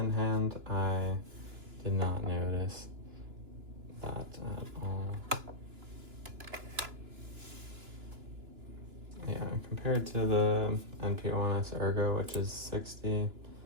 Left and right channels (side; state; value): left; late; 2.9 ms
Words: hand, I did not notice that at all. Yeah, compared to the NP-01 Ergo, which is 60,